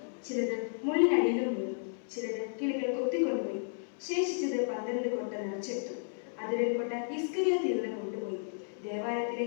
ചിലത് മുള്ളിനടിയിലും വീണു, ചിലത് കിളികൾ കൊത്തിക്കൊണ്ടുപോയി. ശേഷിച്ചത് 12 കൊട്ട നിറച്ചെടുത്തു. അതിൽ കൊട്ട ഇസ്കരിയോത്ത് യൂദൻ കൊണ്ടുപോയി. ദേവാലയത്തിലെ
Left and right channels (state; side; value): silent; right; 56 dB below the other